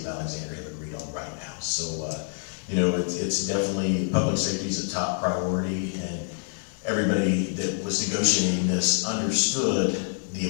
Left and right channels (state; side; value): silent; right; 60 dB below the other